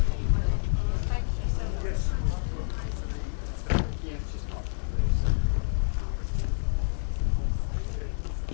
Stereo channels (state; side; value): silent; right; 59 dB below the other